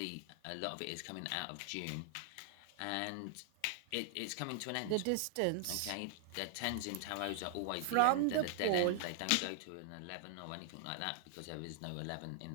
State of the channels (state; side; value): different; both; correlation 0.00